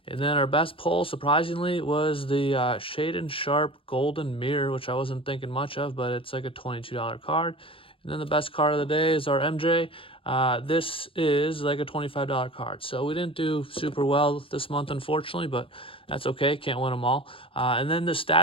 And then our best pull, surprisingly, was the Shaden Sharp Golden Mirror, which I wasn't thinking much of, but it's like a $22 card. And then the best card of the day is our MJ. This is like a $25 card. So we didn't do super well this month, unfortunately, but that's okay. Can't win them all. And then the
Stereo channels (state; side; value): late; right; 0.26 ms